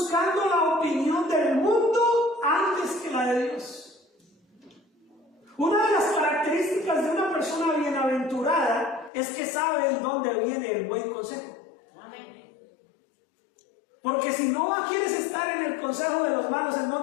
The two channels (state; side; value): drops out; right; at 9.1 s